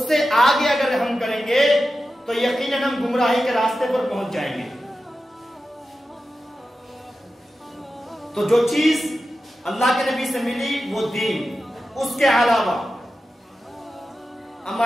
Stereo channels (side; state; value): both; normal; correlation 0.92